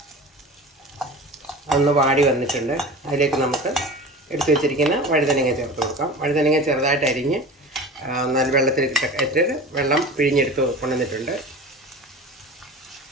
ഒന്ന് വാടി വന്നിട്ടുണ്ട്. അതിലേക്ക് നമുക്ക് എടുത്തു വെച്ചിരിക്കുന്ന വഴുതനങ്ങ ചേർത്ത് കൊടുക്കാം. വഴുതനങ്ങ ചെറുതായിട്ട് അരിഞ്ഞ് നല്ല വെള്ളത്തിൽ ഇട്ടിട്ട് വെള്ളം പിഴിഞ്ഞെടുത്ത് കൊണ്ടുവന്നിട്ടുണ്ട്.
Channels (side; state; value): both; normal; correlation 0.35